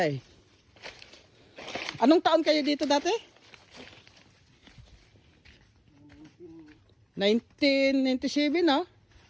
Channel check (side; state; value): both; identical; correlation 1.00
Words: eh. Anong taon kayo dito dati? 1997 no?